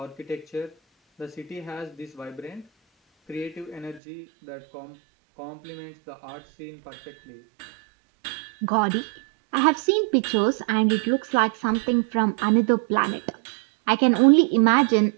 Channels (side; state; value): left; drops out; at 4.0 s